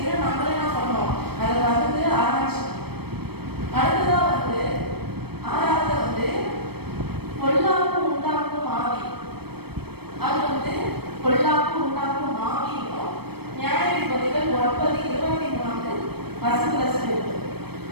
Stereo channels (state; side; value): late; left; 0.97 ms